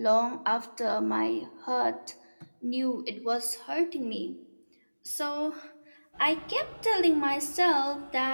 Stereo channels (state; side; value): inverted; both; correlation -1.00